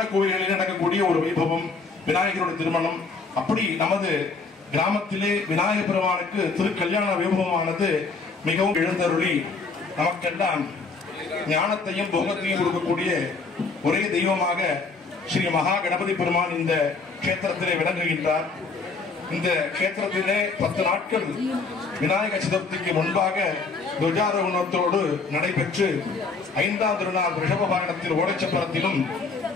கோவில்களில் நடக்கக்கூடிய ஒரு வைபவம் விநாயகருடைய திருமணம். அப்படி நமது கிராமத்திலே விநாயகர் பெருமானுக்கு திருக்கல்யாண வைபவமானது மிகவும் எழுந்தருளி நமக்கெல்லாம் ஞானத்தையும் போகத்தையும் கொடுக்கக்கூடிய ஒரே தெய்வமாக ஸ்ரீ மகா கணபதி பெருமான் இந்த கஷேத்திரத்திலே விளங்குகின்றார். இந்த கஷேத்திரத்திலே 10 நாட்கள் விநாயகர் சதுர்த்திக்கு முன்பாக துவஜாரோகணத்தோடு நடைபெற்று 5ஆம் திருநாள் ரிஷப வாகனத்தில் ஓடைச்சப்பரத்திலும்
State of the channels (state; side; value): quieter; right; 4.2 dB